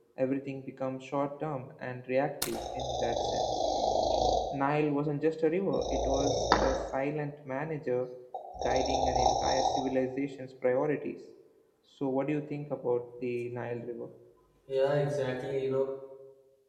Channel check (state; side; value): identical; both; correlation 1.00